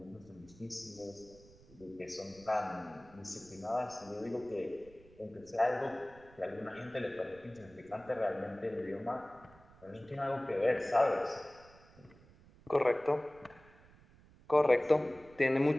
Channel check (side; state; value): right; noise; rumble, 24 dB below the sound